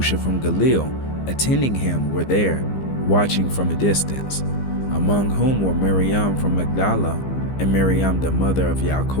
from Galilee, attending him, were there, watching from a distance, among whom were Miriam from Magdala, and Miriam the mother of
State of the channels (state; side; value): late; right; 15 ms